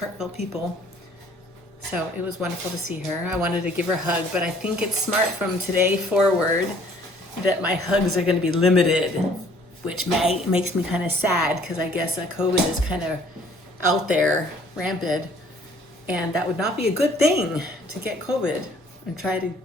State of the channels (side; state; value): both; normal; correlation 0.57